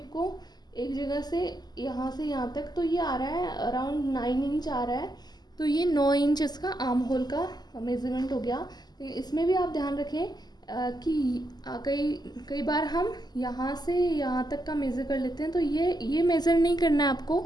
को एक जगह से यहाँ तक। तो ये आ रहा है अराउंड 9 इंच आ रहा है। तो ये 9 इंच इसका आर्म होल का मेज़रमेंट हो गया। इसमें भी आप ध्यान रखें कि कई बार हम यहाँ से यहाँ तक का मेज़र कर लेते हैं। तो ये मेज़र नहीं करना है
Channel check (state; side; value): late; right; 0.20 ms